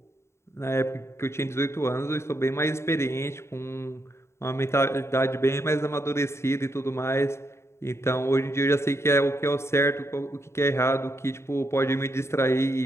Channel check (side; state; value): right; late; 0.13 ms